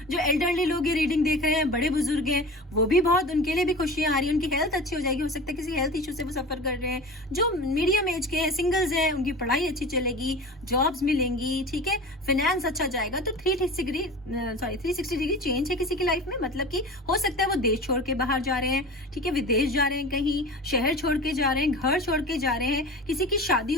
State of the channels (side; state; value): both; normal; correlation 0.34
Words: जो एल्डरली लोग ये रीडिंग देख रहे हैं, बड़े बुजुर्ग हैं, वो भी बहुत, उनके लिए भी खुशियां आ रही है, उनकी हेल्थ अच्छी हो जाएगी। हो सकता है किसी हेल्थ इशू से वो सफर कर रहे हैं। जो मीडियम एज के हैं, सिंगल्स हैं, उनकी पढ़ाई अच्छी चलेगी, जॉब्स मिलेंगी, ठीक है, फाइनेंस अच्छा जाएगा। तो 360 डिग्री चेंज है किसी की लाइफ में, मतलब कि हो सकता है वो देश छोड़ के बाहर जा रहे हैं, ठीक है, विदेश जा रहे हैं, कहीं शहर छोड़ के जा रहे हैं, घर छोड़ के जा रहे हैं, किसी की शादी